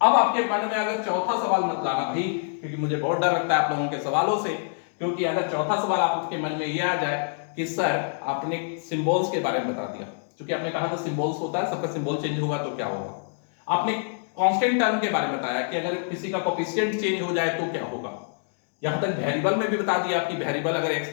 अब आपके मन में अगर चौथा सवाल मत लाना भाई, क्योंकि मुझे बहुत डर लगता है आप लोगों के सवालों से। क्योंकि अगर चौथा सवाल आपके मन में यह आ जाए कि सर आपने सिंबल्स के बारे में बता दिया, क्योंकि आपने कहा था सिंबल्स होता है, सबका सिंबल चेंज होगा तो क्या होगा। आपने कांस्टेंट टर्म के बारे में बताया कि अगर किसी का कोएफिशिएंट चेंज हो जाए तो क्या होगा। यहां तक वेरिएबल में भी बता दिया कि वेरिएबल अगर x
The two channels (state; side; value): silent; right; digital silence